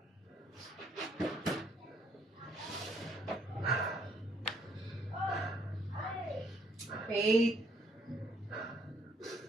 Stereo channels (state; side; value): normal; both; correlation 0.67